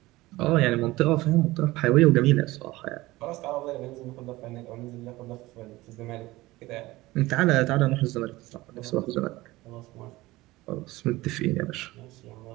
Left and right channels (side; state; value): left; quieter; 19.1 dB